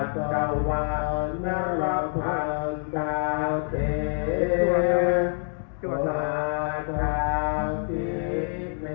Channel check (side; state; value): right; silent; 57 dB below the other